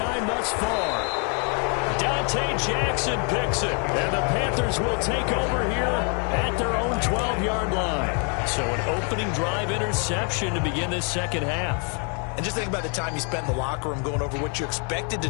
thus far. Dante Jackson picks it. And the Panthers will take over here at their own 12-yard line. So an opening drive interception to begin this second half. And just think about the time you spent in the locker room going over what you expected to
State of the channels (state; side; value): quieter; right; 38.9 dB